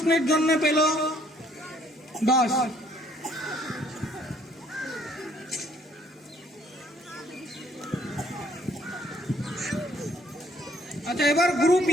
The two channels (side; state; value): both; normal; correlation 0.64